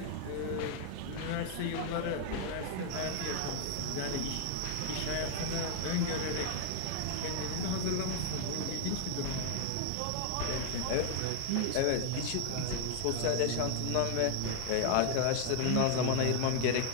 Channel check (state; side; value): different; both; correlation 0.00